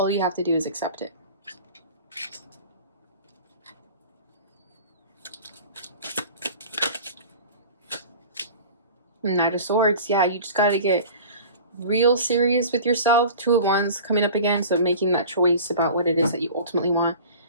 you have to do is accept it. Knight of Swords, yeah, you just got to get real serious with yourself. Two of Wands coming up again, so making that choice about what it is that you ultimately want.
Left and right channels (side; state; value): both; inverted; correlation -0.39